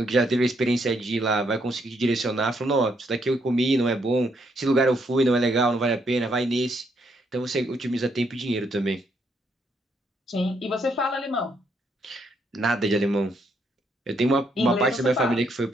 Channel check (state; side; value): normal; both; correlation 0.74